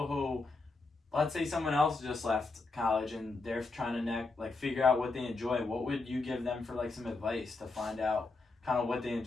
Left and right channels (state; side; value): quieter; right; 3.6 dB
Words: who, let's say someone else just left college and they're trying to figure out what they enjoy? What would you give them for like some advice to find out kind of what they